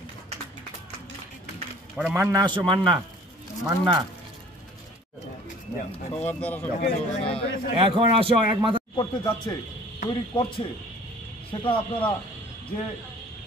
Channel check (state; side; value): normal; both; correlation 0.51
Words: পরে মান্না আসো, মান্না মান্না এখন আসো এক মাথা করতে যাচ্ছে, তৈরি করছে, সেটা আপনারা যে